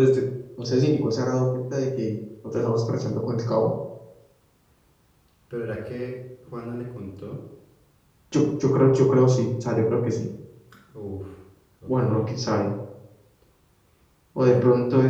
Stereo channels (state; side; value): identical; both; correlation 1.00